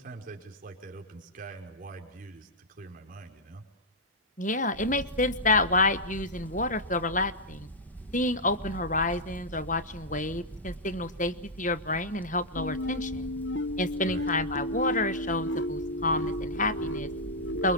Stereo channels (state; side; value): normal; both; correlation -0.07